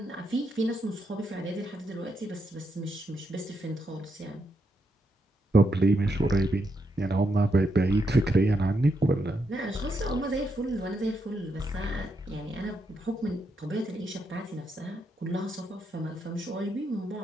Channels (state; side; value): normal; both; correlation 0.81